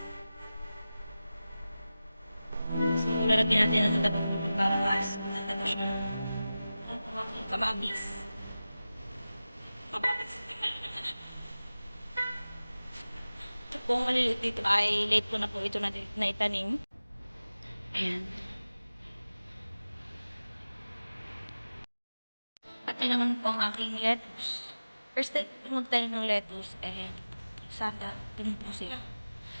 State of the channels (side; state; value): both; inverted; correlation -0.95